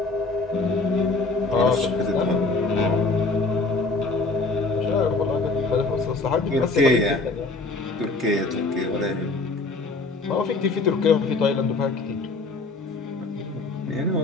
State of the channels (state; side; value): quieter; right; 3.5 dB